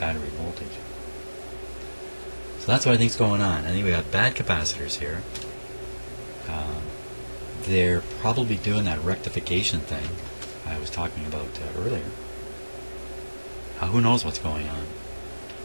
voltage. So that's what I think is going on. I think we got bad capacitors here. They're probably doing that rectification thing I was talking about earlier. Who knows what's going on?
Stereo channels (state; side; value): inverted; both; correlation -1.00